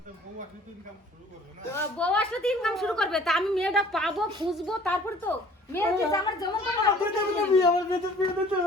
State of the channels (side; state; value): both; normal; correlation 0.52